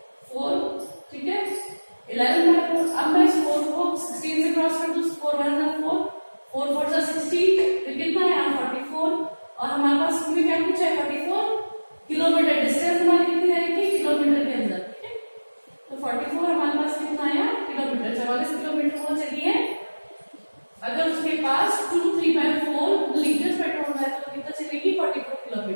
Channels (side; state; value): both; inverted; correlation -1.00